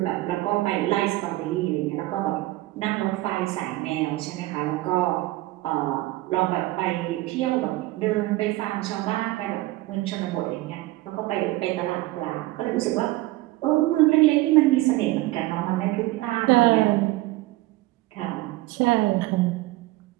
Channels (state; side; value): quieter; left; 18.8 dB